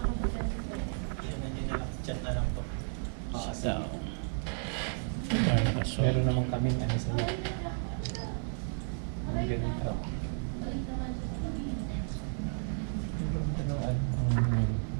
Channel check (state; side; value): silent; left; 56 dB below the other